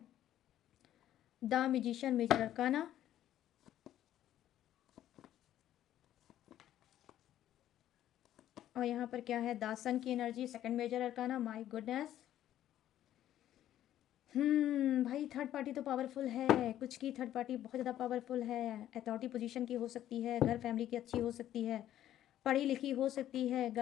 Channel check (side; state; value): right; quieter; 12.1 dB